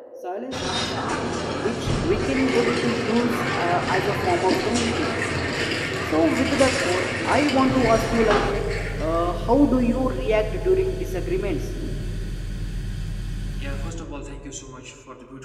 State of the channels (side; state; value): both; identical; correlation 1.00